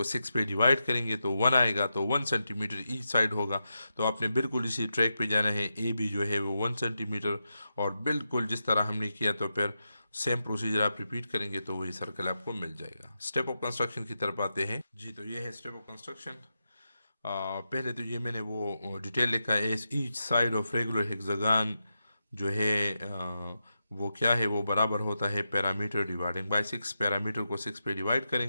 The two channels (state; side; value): inverted; both; correlation -0.88